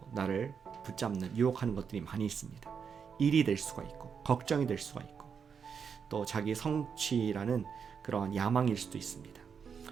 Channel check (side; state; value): left; quieter; 6.6 dB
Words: 나를 붙잡는 유혹하는 것들이 많이 있습니다. 일이 될 수가 있고 걱정이 될 수가 있고 또 자기 성취라는 그러한 야망일 수도 있습니다.